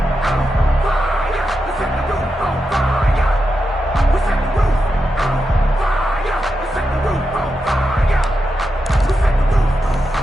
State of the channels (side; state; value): both; normal; correlation 0.87